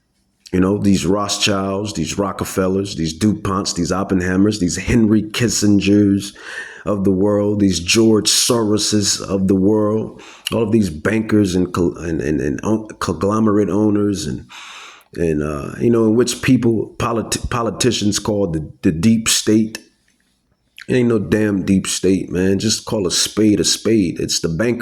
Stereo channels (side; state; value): both; identical; correlation 1.00